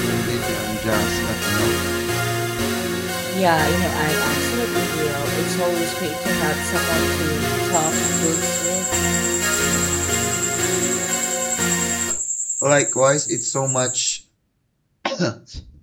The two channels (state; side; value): identical; both; correlation 1.00